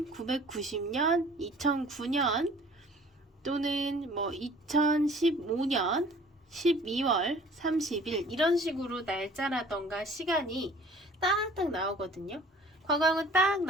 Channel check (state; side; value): normal; both; correlation 0.51